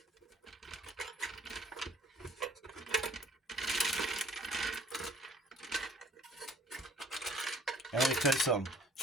And let me tell you something.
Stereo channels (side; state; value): both; normal; correlation 0.55